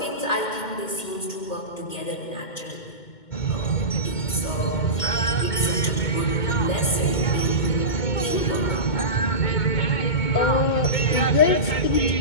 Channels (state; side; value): late; right; 2.1 ms